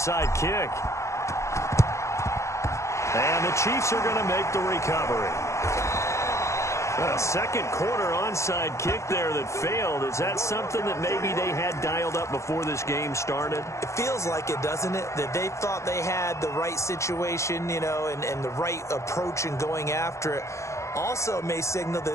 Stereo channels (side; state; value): right; late; 0.14 ms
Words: kick. And the Chiefs are going to make the recovery. A second quarter onside kick there that failed. Is that something that maybe they had dialed up before this game started? It feels like it, doesn't it? That they thought they had the right situation, you know, and the right approach in going after it. Also may signal that